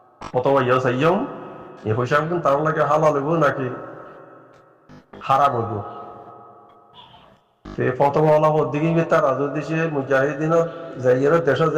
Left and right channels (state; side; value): identical; both; correlation 1.00